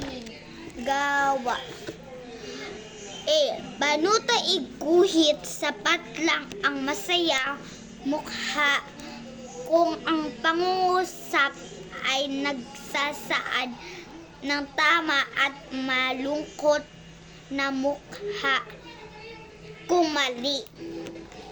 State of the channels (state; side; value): identical; both; correlation 1.00